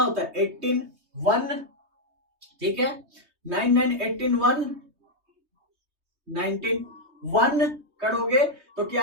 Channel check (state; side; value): late; left; 3.2 ms